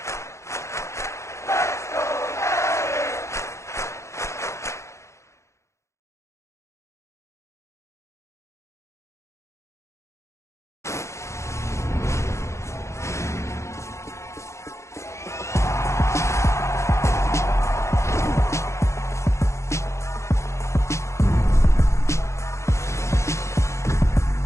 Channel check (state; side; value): late; right; 0.14 ms